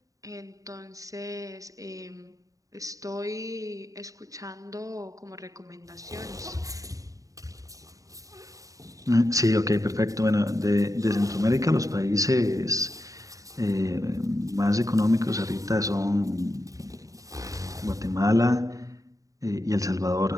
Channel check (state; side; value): late; left; 0.16 ms